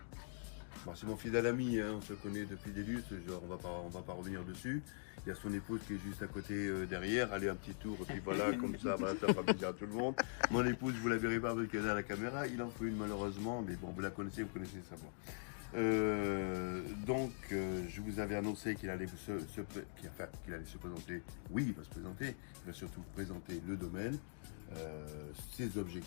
bon, c'est mon fidèle ami, hein, on se connaît depuis des lustres, genre, on va pas revenir dessus. Il y a son épouse qui est juste à côté derrière, allez un petit tour, et puis voilà, comme ça, voilà, ça va bien à tout le monde. Mon épouse, vous la verrez pas parce qu'elle est à la caméra, il en faut une malheureusement, mais bon, vous la connaissez, vous connaissez sa voix. Je vous avais annoncé qu'il allait qu'il allait se présenter. Oui, il va se présenter. Il va surtout présenter le domaine, ses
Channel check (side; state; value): right; silent; digital silence